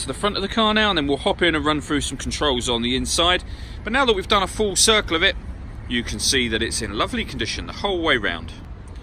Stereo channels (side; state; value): both; identical; correlation 1.00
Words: the front of the car now, and then we'll hop in and run through some controls on the inside. But now that we've done a full circle of it, you can see that it's in lovely condition the whole way round.